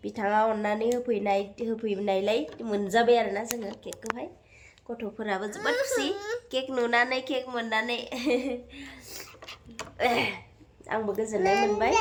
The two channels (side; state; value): both; identical; correlation 1.00